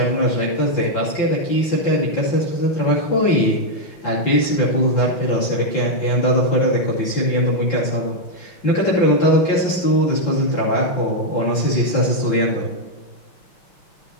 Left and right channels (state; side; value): late; right; 5.8 ms